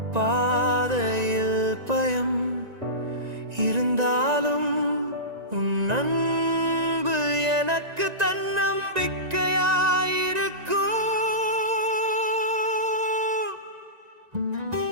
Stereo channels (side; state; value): left; late; 1.9 ms